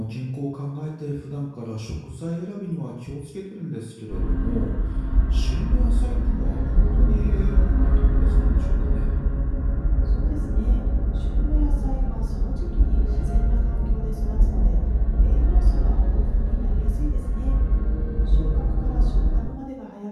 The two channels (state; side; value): identical; both; correlation 1.00